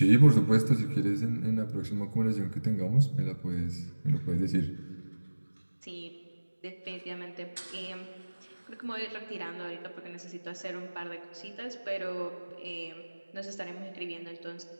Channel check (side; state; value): both; inverted; correlation -1.00